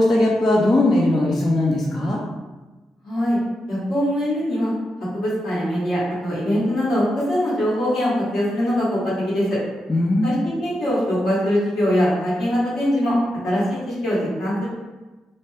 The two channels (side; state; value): both; normal; correlation 0.87